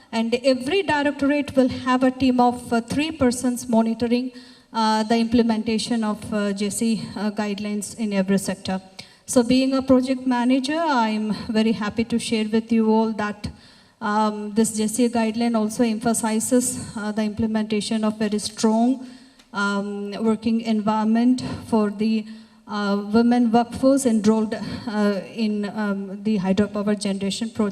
And every directorate will have a team of 3 persons monitoring the implementation of JC guidelines in every sector. So being a project manager, I'm very happy to share with you all that this JC guideline also emphasizes the implementation of very strong working environment for the women workforce enrolled in the hydropower generation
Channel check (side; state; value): both; identical; correlation 1.00